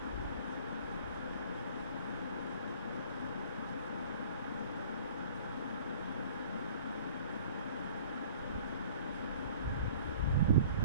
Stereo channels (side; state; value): both; inverted; correlation -0.49